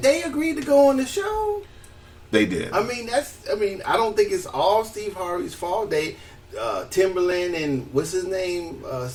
they agreed to go on the show. They did. I mean, I don't think it's all Steve Harvey's fault. They, Timberland and what's his name,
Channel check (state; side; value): identical; both; correlation 1.00